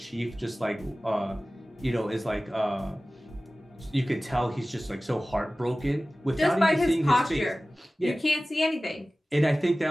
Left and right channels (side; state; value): both; normal; correlation 0.97